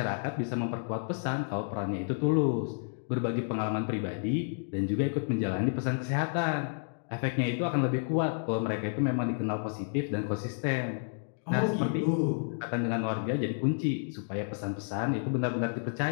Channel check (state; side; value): silent; right; digital silence